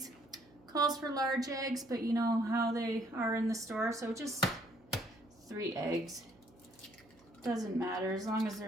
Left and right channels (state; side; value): noise; right; hum, 29 dB below the sound